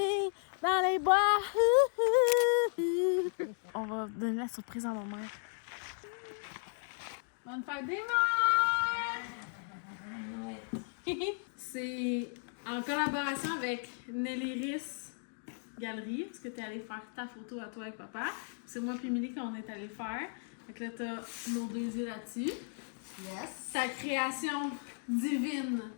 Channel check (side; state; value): right; silent; 54 dB below the other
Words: dans les bois. On va donner la surprise à ma mère. Bonne fête des mères! C'est en collaboration avec Nelly Riss Galerie, parce que tu es allé faire ta photo à toi avec papa. C'est moi et Émilie qu'on est allé faire. Donc là, tu as nos deux yeux là-dessus. Yes. Ta création divine.